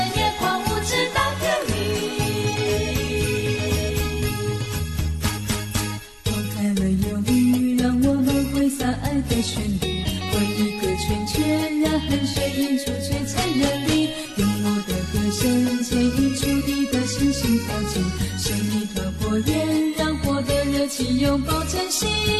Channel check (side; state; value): both; identical; correlation 1.00